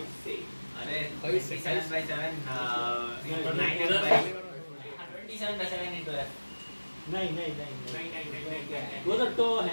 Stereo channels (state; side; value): inverted; both; correlation -1.00